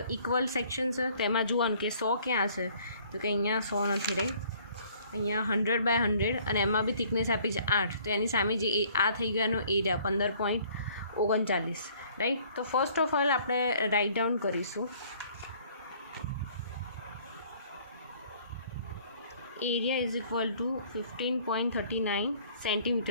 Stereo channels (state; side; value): inverted; both; correlation -0.58